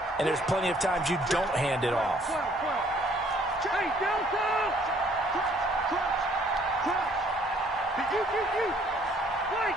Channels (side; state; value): both; normal; correlation 0.61